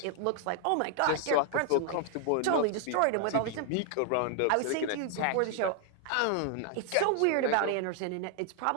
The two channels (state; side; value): different; both; correlation 0.00